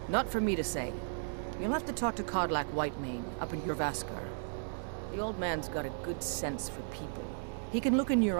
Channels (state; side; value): silent; left; digital silence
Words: Not for me to say. You'll have to talk to Kodlak Whitemane up in Jorvaskar. The old man's got a good sense for people. He can look in your